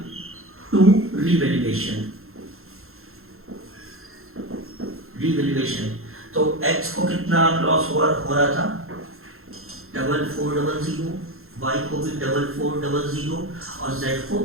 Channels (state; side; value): late; left; 0.62 ms